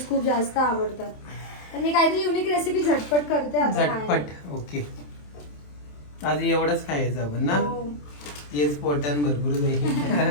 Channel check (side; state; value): right; late; 27 ms